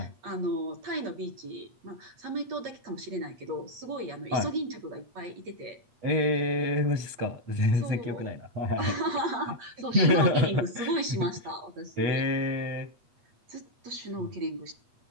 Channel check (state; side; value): late; left; 8.4 ms